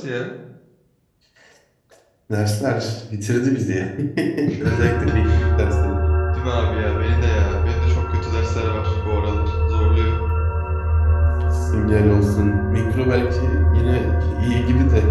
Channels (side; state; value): both; identical; correlation 1.00